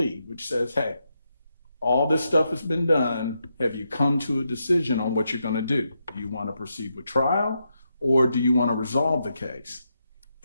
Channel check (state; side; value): inverted; both; correlation -0.83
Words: which says, hey, all this stuff has been done. Have you come to a decision on what you're going to do? Do you want to proceed with trial, or do you want to resolve the case?